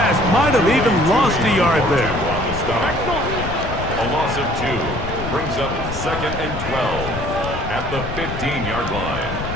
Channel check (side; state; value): left; noise; rumble, 7 dB below the sound